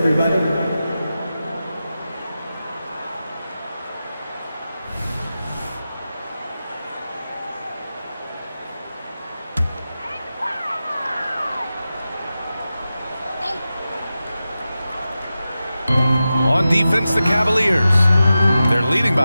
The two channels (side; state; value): both; inverted; correlation -0.93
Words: On defense, the Cavaliers. They're leading